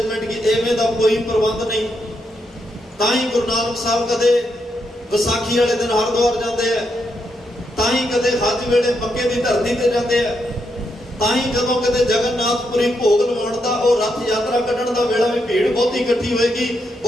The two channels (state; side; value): normal; both; correlation 0.80